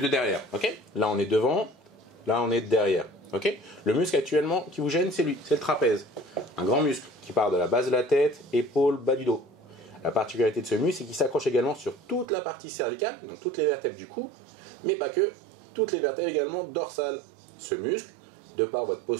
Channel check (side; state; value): left; drops out; at 12.2 s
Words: de derrière, ok ? Là, on est devant, là, on est derrière, ok ? Le muscle actuellement qui vous gêne, c'est lui, c'est le trapèze. Un grand muscle qui part de la base de la tête, épaule, bas du dos. La particularité de ce muscle, c'est qu'il s'accroche également sur toute la partie cervicale, donc toutes les vertèbres du cou, mais pas que, toutes les vertèbres également dorsales. Ce muscle, de par votre